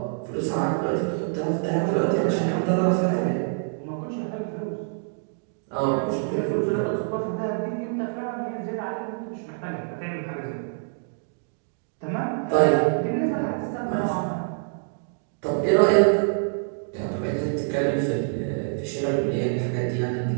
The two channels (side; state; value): left; silent; digital silence